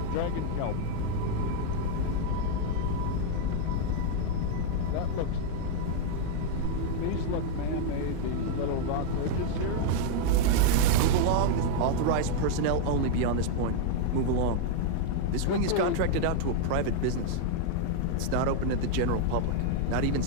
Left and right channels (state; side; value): different; both; correlation 0.00